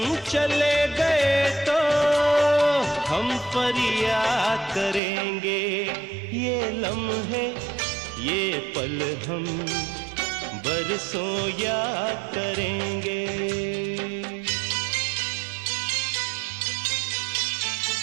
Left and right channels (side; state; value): left; drops out; at 5.0 s